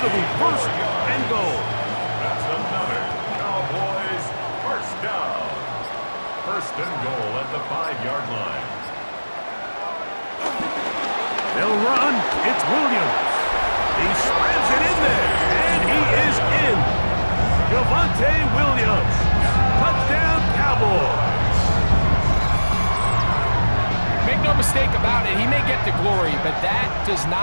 be 1st and goal. That's another Cowboys first down. First and goal at the 5-yard line. They'll run. It's Williams. He slams it in there. And he is in. Javonte Williams. Touchdown, Cowboys. Make no mistake about it, he may get the glory, but that does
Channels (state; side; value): inverted; both; correlation -1.00